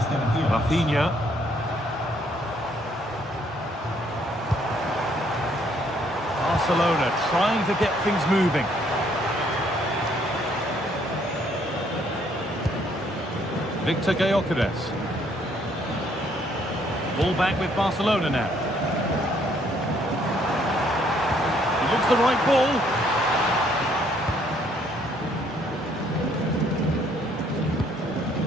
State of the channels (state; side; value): normal; both; correlation 0.66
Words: Rafinha. Barcelona trying to get things moving. Victor Gyökeres. Ball back with Barcelona now. He looks the right ball.